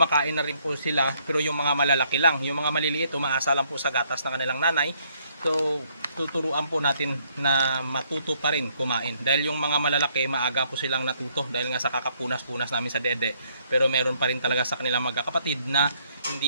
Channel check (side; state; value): both; inverted; correlation -0.69